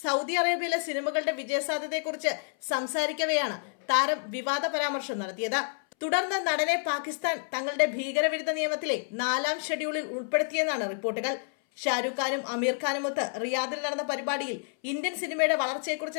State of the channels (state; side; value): silent; right; 59 dB below the other